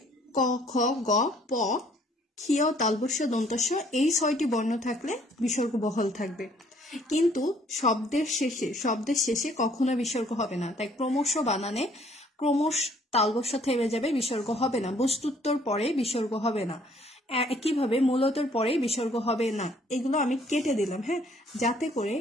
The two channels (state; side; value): normal; both; correlation 0.61